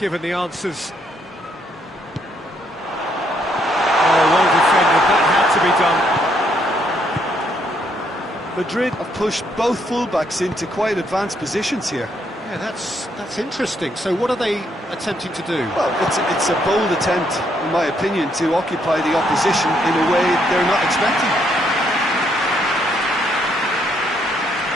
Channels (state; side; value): normal; both; correlation 0.72